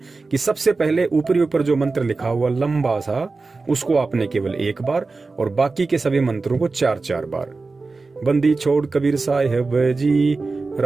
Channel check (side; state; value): left; quieter; 3.9 dB